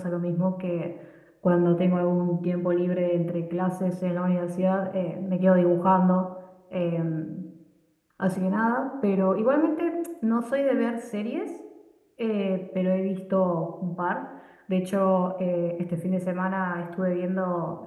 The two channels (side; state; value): both; identical; correlation 1.00